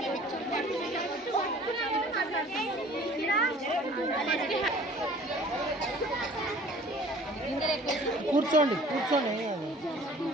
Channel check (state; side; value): normal; both; correlation 0.50